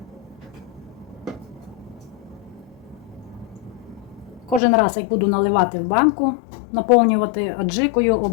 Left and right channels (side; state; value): right; drops out; at 4.6 s